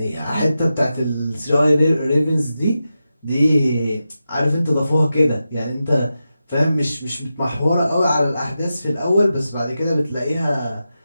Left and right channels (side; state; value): both; inverted; correlation -0.90